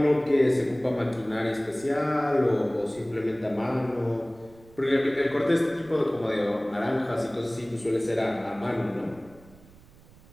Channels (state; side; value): noise; right; rumble, 25 dB below the sound